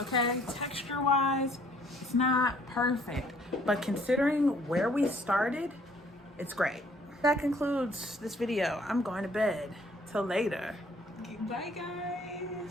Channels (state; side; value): normal; both; correlation 0.60